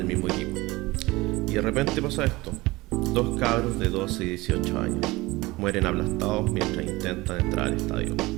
mismo equipo. Y de repente pasa esto. Dos cabros de 12 y 18 años mueren aplastados mientras intentan entrar al estadio.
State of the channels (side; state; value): left; quieter; 21.0 dB